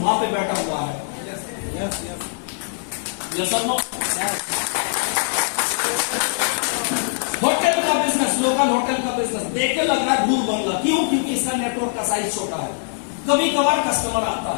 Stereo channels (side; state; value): right; silent; 64 dB below the other